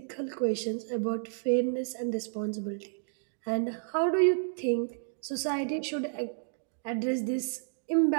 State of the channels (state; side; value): silent; left; digital silence